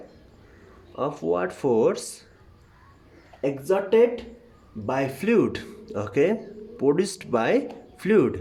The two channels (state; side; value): identical; both; correlation 1.00